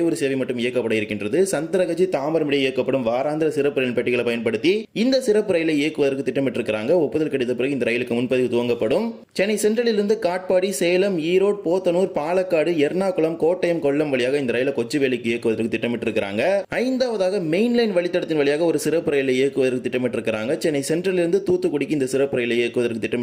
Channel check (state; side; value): identical; both; correlation 1.00